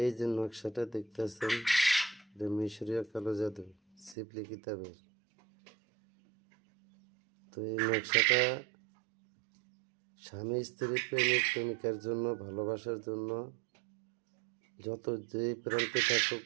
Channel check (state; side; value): drops out; left; at 4.2 s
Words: এই যে নকশাটা দেখতেছেন, এটা মিশরীয় কালো জাদু শিবলি কিতাবের। তো এই নকশাটা স্বামী স্ত্রী প্রেমিক প্রেমিকার জন্য, ভালোবাসার জন্য যত যেই প্রান্তে থাকুক